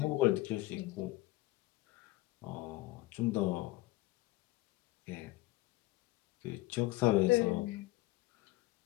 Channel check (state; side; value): quieter; right; 18.8 dB